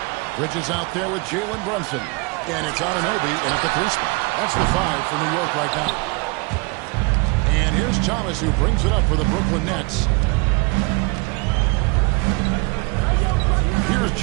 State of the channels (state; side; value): quieter; left; 28.3 dB